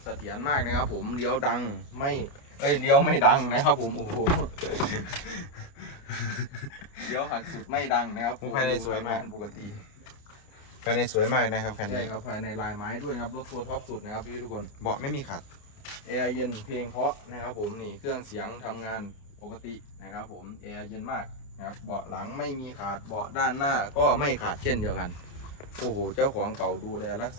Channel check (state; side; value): late; right; 29 ms